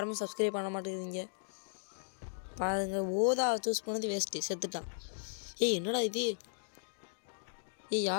சப்ஸ்கிரைப் பண்ண மாட்டேங்குதுங்க. பாருங்கள், ஓதா சூஸ் பண்ணது வேஸ்ட்டு, செத்துட்டான். ஏய் என்னடா இது?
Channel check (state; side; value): silent; right; digital silence